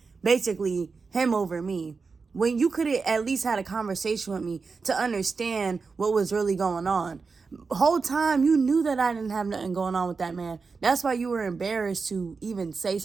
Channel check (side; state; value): left; quieter; 4.7 dB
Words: basically him over me, when you could have at least had a conversation with me to understand what was really going on. Whole time you knew that I didn't have nothing going on with that man. That's why you were embarrassed to even say